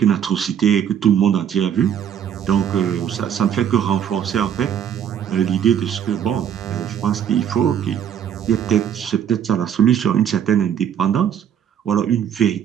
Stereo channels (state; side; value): quieter; left; 9.0 dB